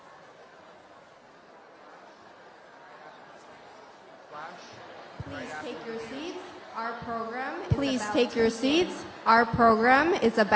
Please take your seats. Our program is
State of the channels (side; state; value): both; identical; correlation 1.00